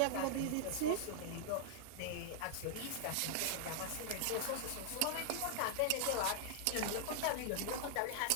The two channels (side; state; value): both; different; correlation -0.01